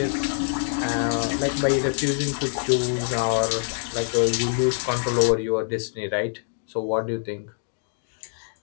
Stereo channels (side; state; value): right; silent; digital silence